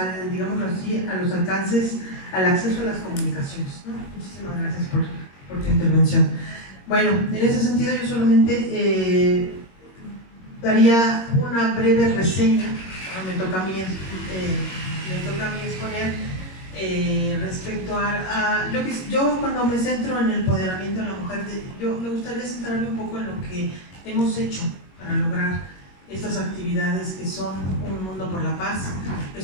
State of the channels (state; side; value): late; right; 22 ms